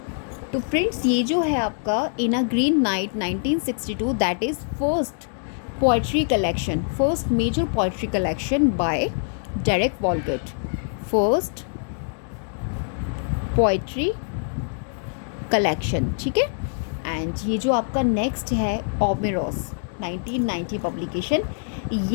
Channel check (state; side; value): silent; right; digital silence